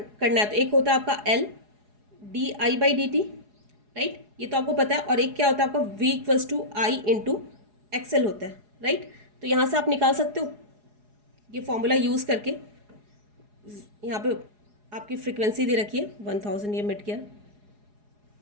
है तो एक होता है आपका L D I by D T, right, ये तो आपको पता है। और एक क्या होता है आपका V equals to I into XL होता है, राइट। तो यहाँ से आप निकाल सकते हो ये फॉर्मूला यूज़ करके। यहाँ पे आपकी फ्रीक्वेंसी दे रखी है 1000, ये मिट गया।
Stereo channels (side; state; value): left; late; 4.8 ms